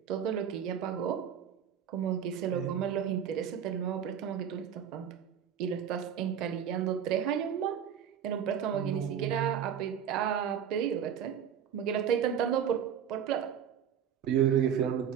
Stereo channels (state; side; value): quieter; left; 8.7 dB